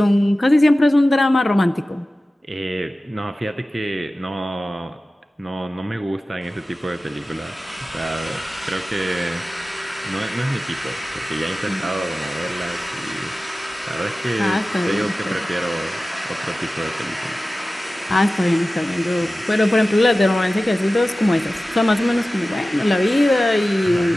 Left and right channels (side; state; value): both; normal; correlation 0.96